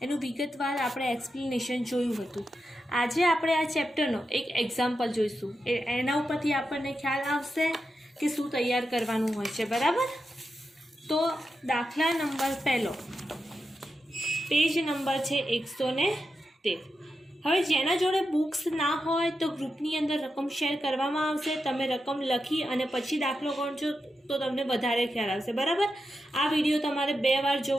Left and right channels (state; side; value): normal; both; correlation 0.88